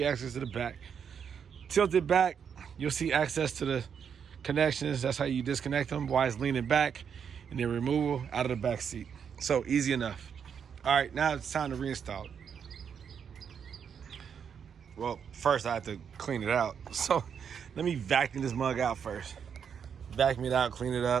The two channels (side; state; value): left; quieter; 7.3 dB